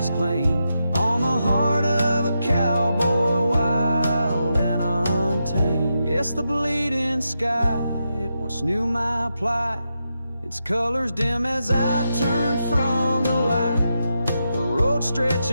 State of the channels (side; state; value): both; inverted; correlation -0.86